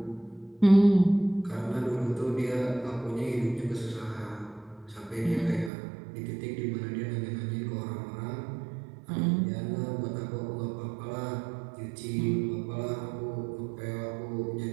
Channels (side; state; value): left; drops out; at 5.7 s